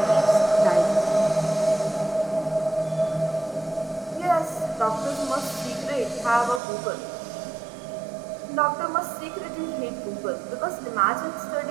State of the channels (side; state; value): left; drops out; at 6.6 s